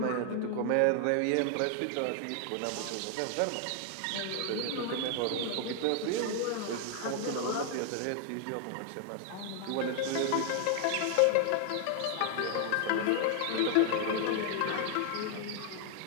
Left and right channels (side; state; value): both; different; correlation 0.00